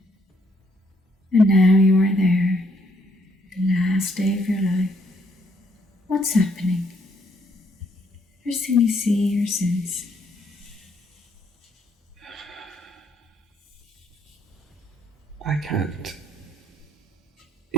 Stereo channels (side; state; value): both; normal; correlation 0.70